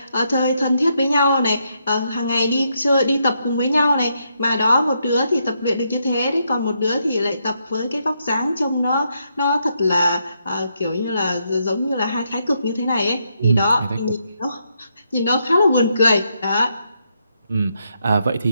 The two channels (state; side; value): inverted; both; correlation -0.79